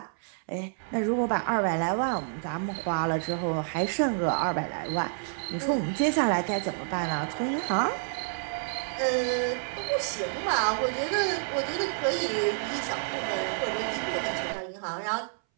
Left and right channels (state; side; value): silent; left; 59 dB below the other